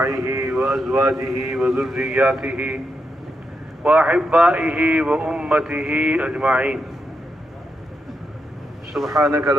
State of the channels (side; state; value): both; normal; correlation 0.84